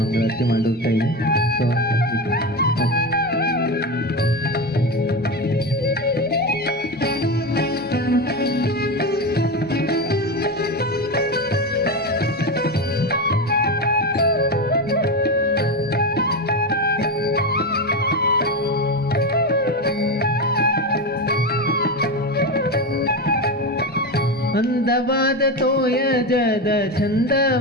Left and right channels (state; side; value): normal; both; correlation 0.18